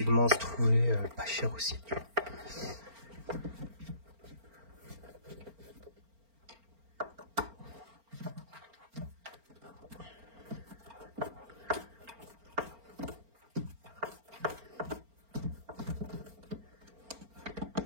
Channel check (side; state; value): left; late; 4.4 ms